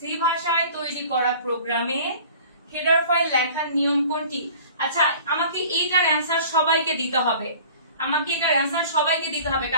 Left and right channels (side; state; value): both; inverted; correlation -0.46